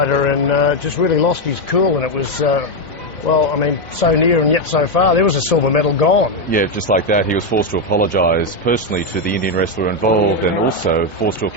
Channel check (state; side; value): late; right; 1.3 ms